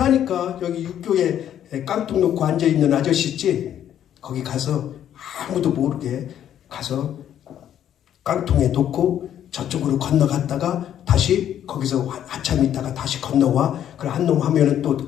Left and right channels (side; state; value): right; quieter; 10.4 dB